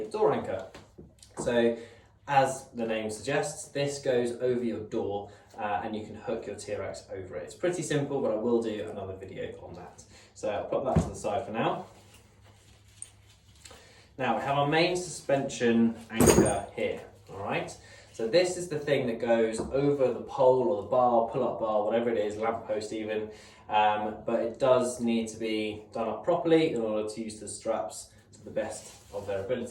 door anchor. So as the name suggests, this goes over your door and you can hook your TRX over it. It's pretty simple, but I will do another video on that. So I'll put that to the side for now. Now we have our main suspension anchor here, all right? So this is the thing that goes over the pole or the bar, pull-up bar, whatever it is, lamppost even, but it does need to be done up properly in order to use the straps to the best of their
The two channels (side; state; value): both; identical; correlation 1.00